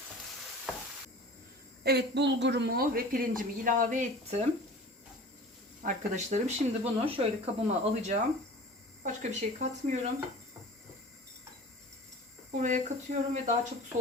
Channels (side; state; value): both; normal; correlation 0.40